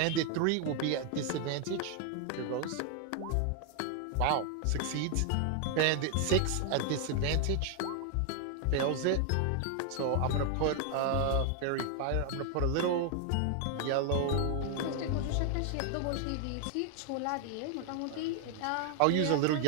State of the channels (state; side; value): different; both; correlation 0.00